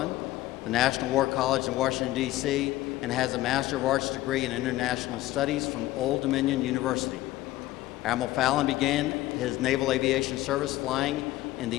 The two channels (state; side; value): quieter; right; 16.5 dB